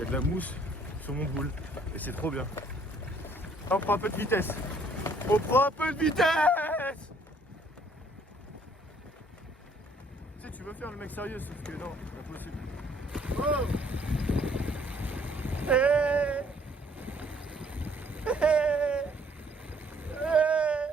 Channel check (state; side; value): normal; both; correlation 0.62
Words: a de la mousse sur mon boule et c'est trop bien. On prend un peu de vitesse. On prend un peu de vitesse. Tu sais, tu veux faire le mec sérieux, sauf que non, c'est pas possible. Oh. Hey. Hey. Hey.